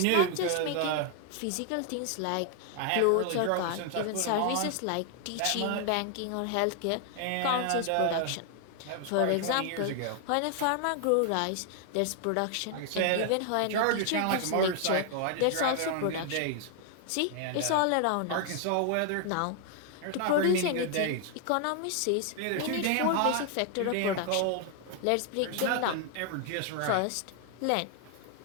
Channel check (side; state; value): both; different; correlation 0.00